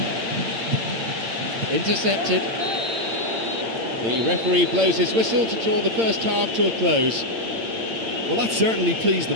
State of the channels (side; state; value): left; late; 8.8 ms